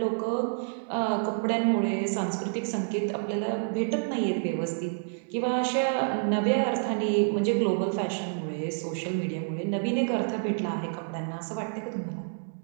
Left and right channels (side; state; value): left; silent; digital silence